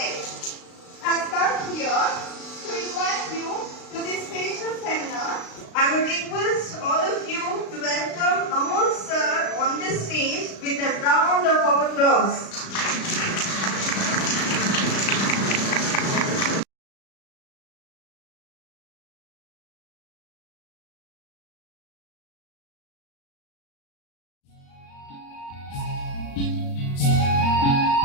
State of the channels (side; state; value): right; late; 36 ms